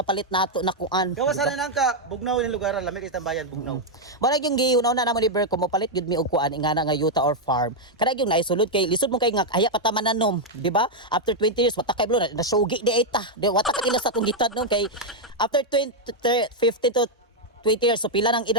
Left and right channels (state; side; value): normal; both; correlation -0.01